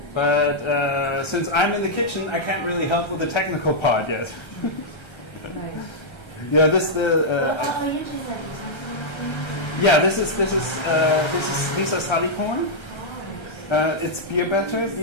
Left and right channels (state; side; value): late; right; 1.3 ms